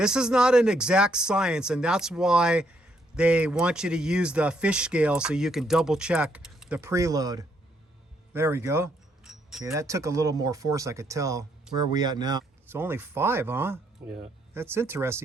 is not an exact science, and that's why they want you to use the fish scale so you can double check the preload. There we go. Okay, that took a little more force, I could tell. Where are we at now? It's only 5, huh? Yeah. That's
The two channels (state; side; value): normal; both; correlation 0.73